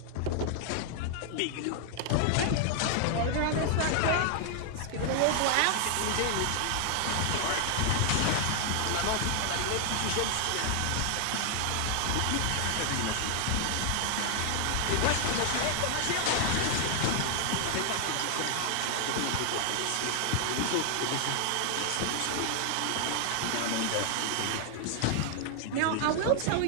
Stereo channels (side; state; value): both; different; correlation 0.00